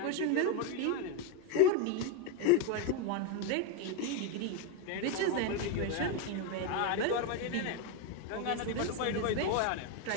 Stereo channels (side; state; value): both; different; correlation 0.02